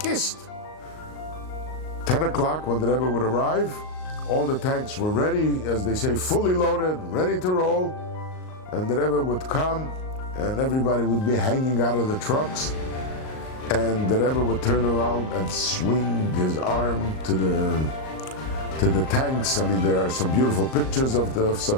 10 o'clock when the Rebbe would arrive, all the tanks were ready, as they say, fully loaded, ready to roll. And the Rebbe would come, and everybody would be hanging out of the trucks. And the Rebbe would turn around and swing his arm to the tanks. I mean, there are some beautiful pictures of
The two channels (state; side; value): late; right; 38 ms